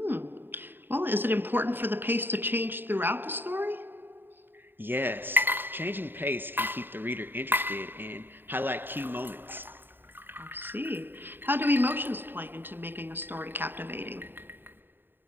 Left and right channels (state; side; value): late; left; 0.095 ms